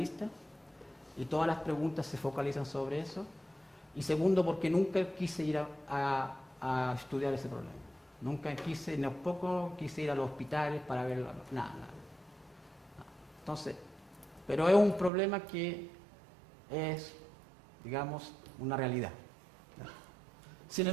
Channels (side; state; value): left; drops out; at 15.1 s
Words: y todas las preguntas se focalizan sobre eso. Y segundo, porque nunca quise ir a estudiar ese problema. Nunca quise, tampoco quise ir a los hospitales para verlo, nada. Entonces, pero es un problema que es, digamos, una realidad. Sin